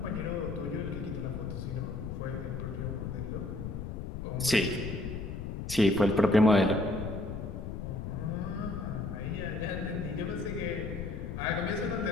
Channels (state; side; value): noise; left; rumble, 6 dB below the sound